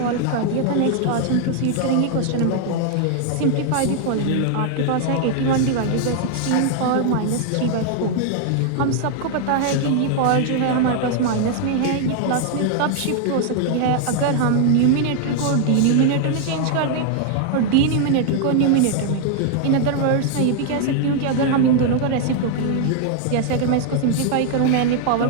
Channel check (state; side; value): different; both; correlation 0.00